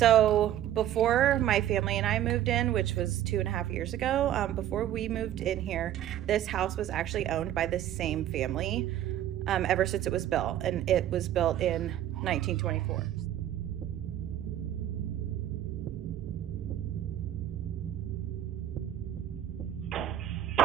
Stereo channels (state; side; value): quieter; left; 11.9 dB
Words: before my family and I moved in, which was 2.5 years ago, before we moved in here, this house was actually owned by the same family ever since it was built. And it was built in 1924.